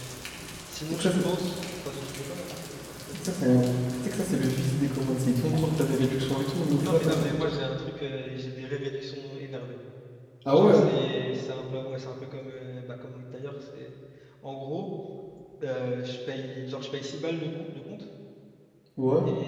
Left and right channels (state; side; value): identical; both; correlation 1.00